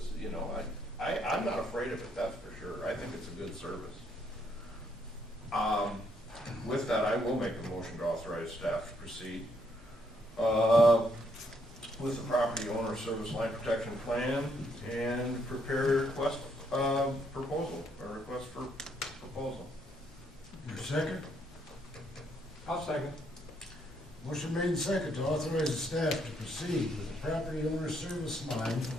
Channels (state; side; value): normal; both; correlation 0.72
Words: you know, I'm not afraid of it, that's for sure. I think it's a good service. With that, I will make a motion to authorize staff to proceed with the property owner service line protection plan and prepare a request proposal, or request for proposal. Your second? I'll second. Motion made and second to authorize the staff to proceed with the property owner service line